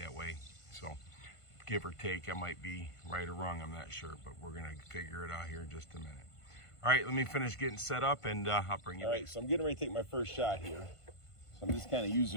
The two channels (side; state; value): right; late; 1.5 ms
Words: way. So give or take, I might be right or wrong, I'm not sure, but we're gonna figure it out here in just a minute. All right, let me finish getting set up and I'll bring you back. All right, so I'm getting ready to take my first shot here. So I'm just kind of